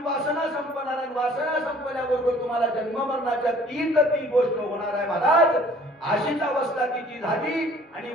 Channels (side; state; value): both; normal; correlation 0.54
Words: वासना संपणार आहे. वासना संपल्याबरोबर तुम्हाला जन्म मरणाच्या ती गोष्ट होणार आहे महाराज. अशीच अवस्था तिची झाली आणि